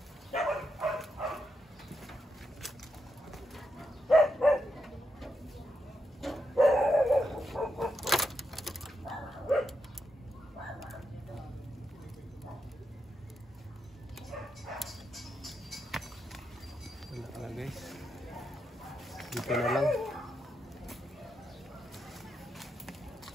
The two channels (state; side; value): normal; both; correlation 0.84